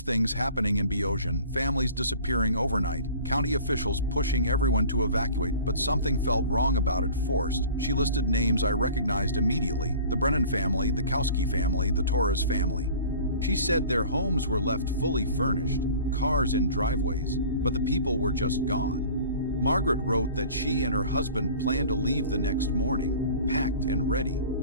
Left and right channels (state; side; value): inverted; both; correlation -0.44